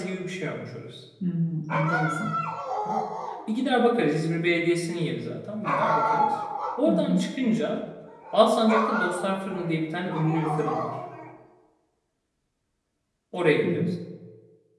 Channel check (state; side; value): identical; both; correlation 1.00